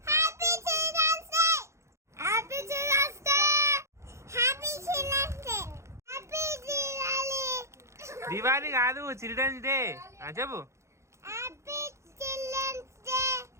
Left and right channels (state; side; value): late; left; 0.14 ms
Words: దివాళీ కాదు, చిల్డ్రన్స్ డే చెప్పు.